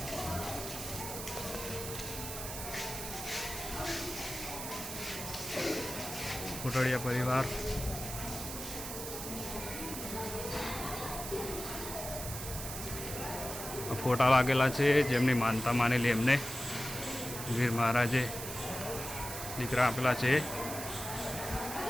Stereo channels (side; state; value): right; noise; hiss, 7 dB below the sound